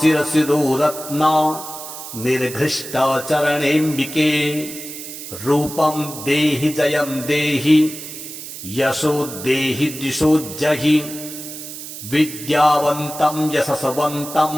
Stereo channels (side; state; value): right; noise; hiss, 11 dB below the sound